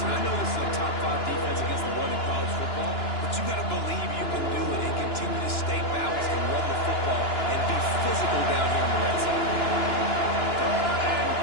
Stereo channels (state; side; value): late; right; 2.9 ms